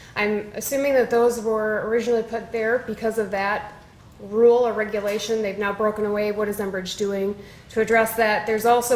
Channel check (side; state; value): both; identical; correlation 1.00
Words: I'm assuming that those were originally put there because of that rule or regulation. They've now broken away. What is Enbridge doing to address that? There's